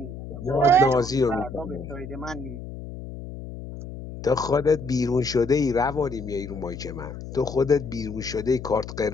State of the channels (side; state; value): left; noise; hum, 11 dB below the sound